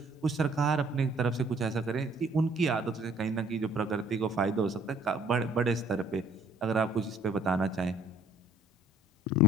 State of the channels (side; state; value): both; normal; correlation 0.58